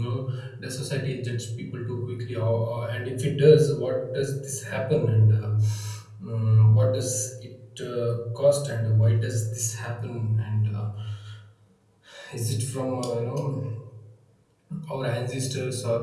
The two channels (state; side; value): identical; both; correlation 1.00